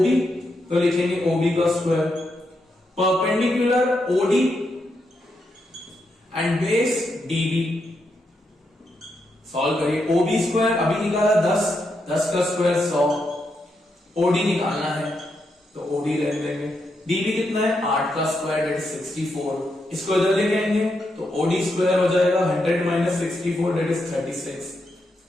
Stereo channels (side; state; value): both; normal; correlation 0.82